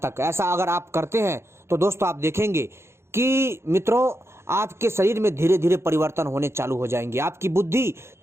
ऐसा अगर आप करते हैं तो दोस्तों आप देखेंगे कि मित्रों आपके शरीर में धीरे धीरे परिवर्तन होने चालू हो जाएंगे, आपकी बुद्धि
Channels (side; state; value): left; late; 0.13 ms